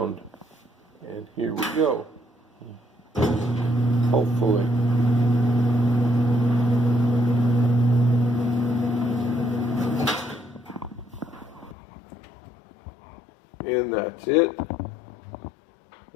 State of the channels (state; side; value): drops out; right; at 11.8 s